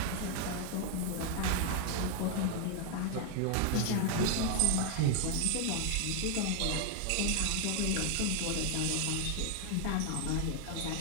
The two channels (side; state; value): both; different; correlation 0.00